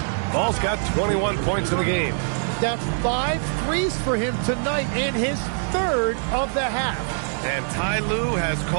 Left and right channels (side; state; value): left; silent; digital silence